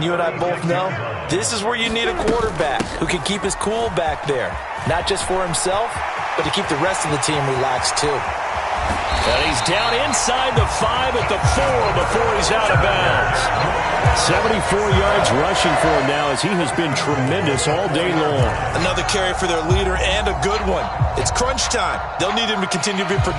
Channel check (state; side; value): identical; both; correlation 1.00